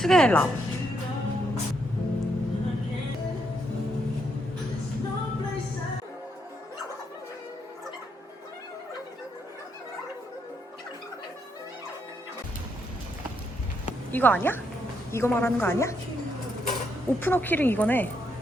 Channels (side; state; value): both; normal; correlation 0.77